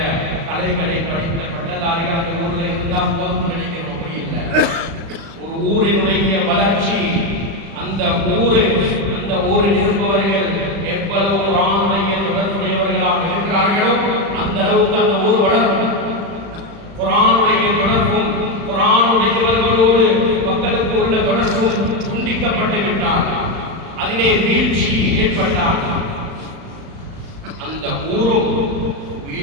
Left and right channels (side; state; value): left; late; 36 ms